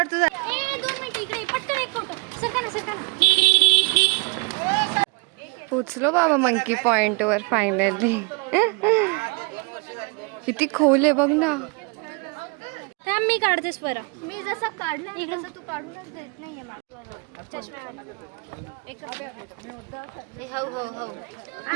तुझा. 2 मिनिट इकडे पटकन एक फोटो. सरका ना. पोचलो बाबा मंकी पॉइंट वर फायनली. किती खोल आहे बघ ना. थांब मी काढतेस बरं. मी जसं काढलं इकडे तू काढूनच देत नाहीये मला.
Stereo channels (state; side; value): quieter; left; 30.9 dB